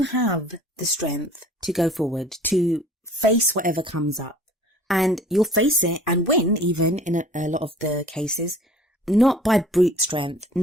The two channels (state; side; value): normal; both; correlation 0.49